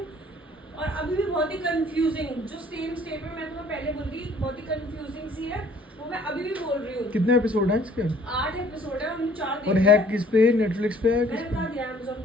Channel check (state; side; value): normal; both; correlation 0.56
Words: और अभी भी बहुत ही कंफ्यूजिंग, जो सेम स्टेटमेंट मैं तुम्हें पहले बोल रही, बहुत ही कंफ्यूजिंग सी है, वो मैं अभी भी बोल रही हूँ। कितने एपिसोड हैं इसके? 8 एपिसोड है, हमने 4 देखे और है किस पे? नेटफ्लिक्स पे है? किस मैंने पे? बता दिया Amazon